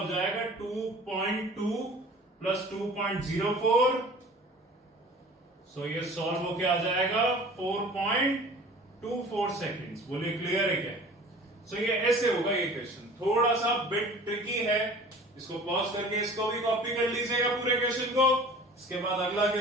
जाएगा 2.2 + 2.04। सो ये सॉल्व होके आ जाएगा 4.24 सेकेंड्स। बोलिए क्लियर है क्या? सो ये ऐसे होगा ये क्वेश्चन, थोड़ा सा बिट ट्रिकी है। इसको पॉज करके इसको भी कॉपी कर लीजिएगा पूरे क्वेश्चन को। इसके बाद अगला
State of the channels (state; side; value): normal; both; correlation 0.45